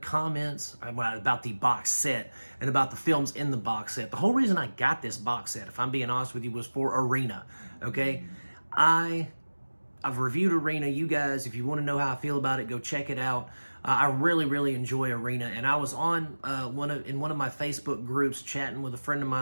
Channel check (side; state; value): both; inverted; correlation -1.00